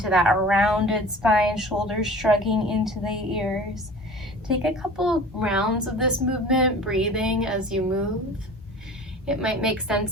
that rounded spine, shoulders shrugging into the ears. take a couple rounds of this movement, breathing as you move. It might make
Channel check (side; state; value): both; normal; correlation 0.42